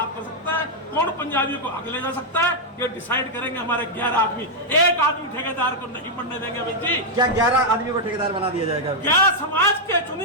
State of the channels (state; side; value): normal; both; correlation -0.03